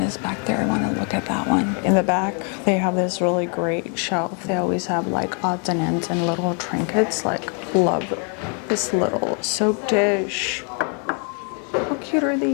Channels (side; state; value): right; quieter; 39.4 dB